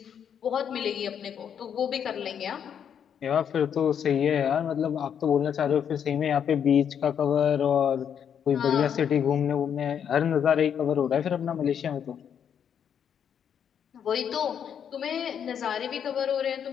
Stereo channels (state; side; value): quieter; right; 8.3 dB